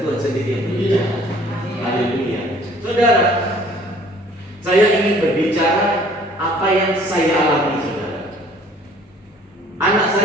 Tuhan sendiri yang berbicara. Haleluya. Saudara, saya ingin berbicara apa yang saya alami, saudara. Anak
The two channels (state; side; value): normal; both; correlation 0.55